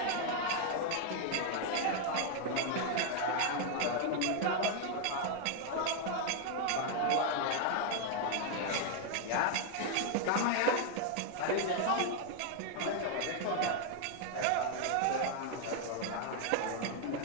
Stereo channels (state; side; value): different; both; correlation 0.00